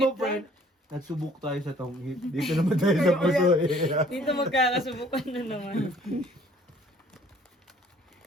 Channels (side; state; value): both; normal; correlation 0.57